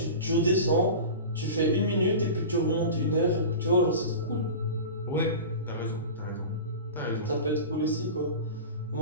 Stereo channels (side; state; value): both; inverted; correlation -0.31